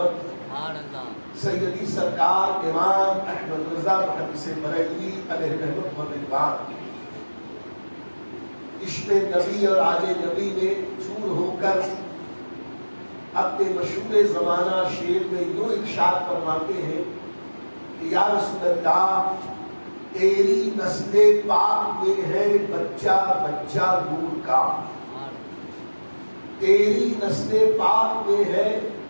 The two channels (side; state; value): both; inverted; correlation -1.00